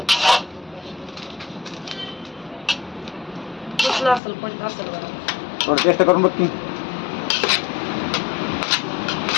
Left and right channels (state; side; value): drops out; right; at 4.2 s